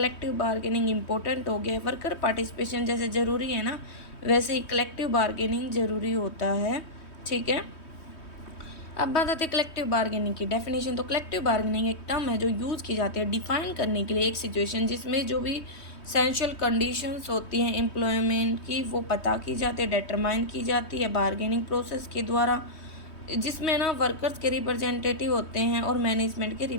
बार्गेनिंग इंपॉर्टेंट हो गया है। वर्कर पार्टिसिपेशन जैसे ज़रूरी है ना, वैसे ही कलेक्टिव बार्गेनिंग ज़रूरी होता है। ठीक है, अब बात आती है कलेक्टिव बार्गेनिंग की डेफिनेशन। तो कलेक्टिव बार्गेनिंग एक टर्म है जो यूज़ की जाती है डिफाइन करने के लिए एक सिचुएशन जिसमें जो भी एसेंशियल कंडीशंस होती हैं एम्प्लॉयमेंट की वो पता की जाती है, डिटरमाइन की जाती है बार्गेनिंग प्रोसेस के द्वारा, जिसमें ना वर्कर्स के रिप्रेजेंटेटिव होते हैं और मैनेजमेंट के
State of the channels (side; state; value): right; late; 3.2 ms